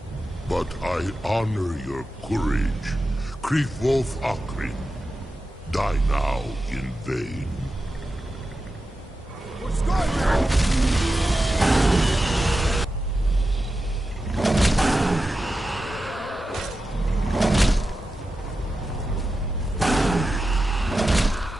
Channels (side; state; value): both; normal; correlation 0.91